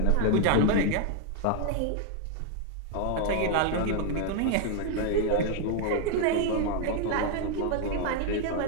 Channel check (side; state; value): both; different; correlation 0.00